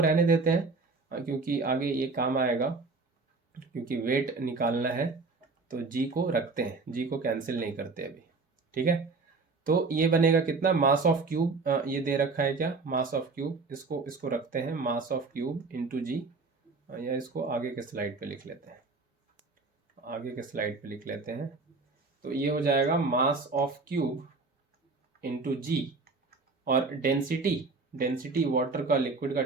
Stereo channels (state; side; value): quieter; left; 4.0 dB